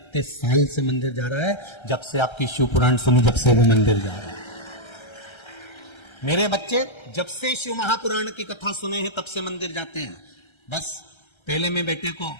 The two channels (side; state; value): right; late; 1.3 ms